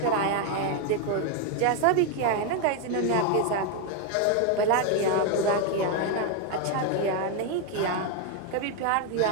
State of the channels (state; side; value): different; both; correlation 0.01